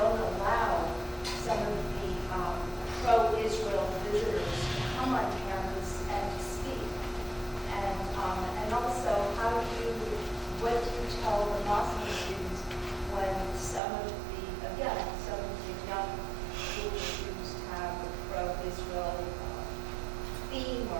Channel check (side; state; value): left; drops out; at 13.8 s